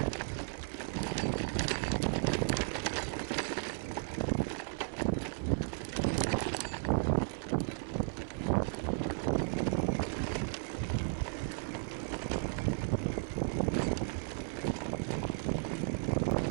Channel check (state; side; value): silent; left; 54 dB below the other